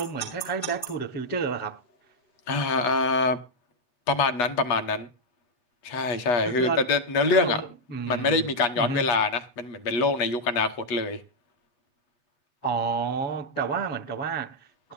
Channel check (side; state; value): right; late; 8.3 ms